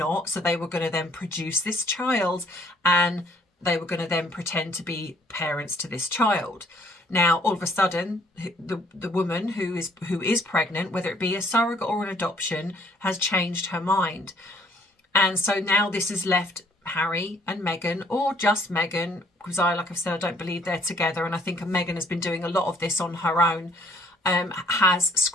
So they were going to then produce this child, and they were going to then pretend to be parents to this child. Now, all of a sudden, the woman who is pregnant, whether it be a surrogate or an adoption, has changed her mind. And so now this has left Harry and Meghan, or just Meghan, because like I've said, I don't believe they're together. And I think Meghan has been doing a lot of this on her own. Has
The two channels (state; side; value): normal; both; correlation 0.62